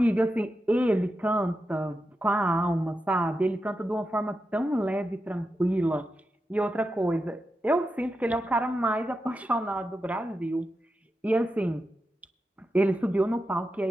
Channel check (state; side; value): normal; both; correlation 0.89